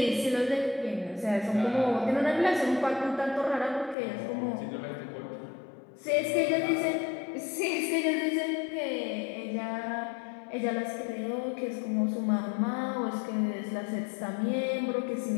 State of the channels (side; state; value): right; drops out; at 4.0 s